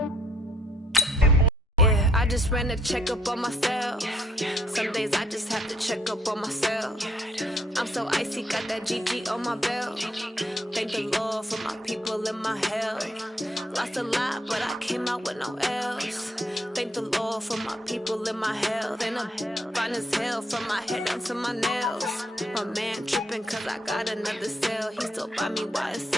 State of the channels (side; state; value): both; normal; correlation 0.69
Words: Yeah, I just ran a checkup on myself. Some days I just have to check up on myself. I'm so icy, got that GG on my belt. Thank the Lord for my people and my health. Lost a lot, but I came out with no else. Thank the Lord for my people and my health. And I'm fine as hell from my head down to my nails. My man tripping cause I got another cell. He still buy me